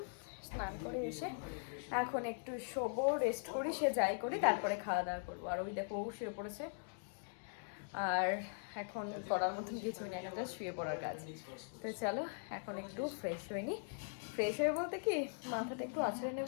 স্নান করে এসে এখন একটু শোবো, রেস্ট করি, সে যাই করি, তারপরে খাওয়া দাওয়া করবো। আর ওই দেখো ও শুয়ে পড়েছে, আর এখন করার মতন কিছুই না, এখন শুয়ে পড়ার কাজ। তো চলো এখন একটু ফ্রেশ হয়ে নি। ফ্রেশ হয়ে বলতে কি মাথাটা একটু আছড়ে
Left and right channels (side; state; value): right; silent; digital silence